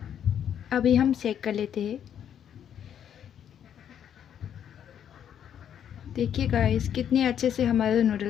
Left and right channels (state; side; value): quieter; right; 9.3 dB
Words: अभी हम चेक कर लेते हैं। देखिए गाइस कितने अच्छे से हमारा